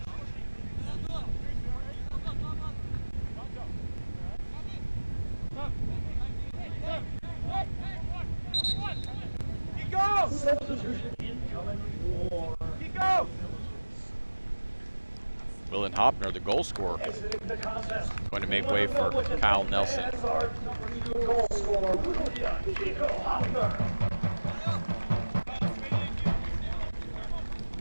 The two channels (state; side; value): inverted; both; correlation -1.00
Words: Willen Hopner, the goal scorer, going to make way for Kyle Nelson.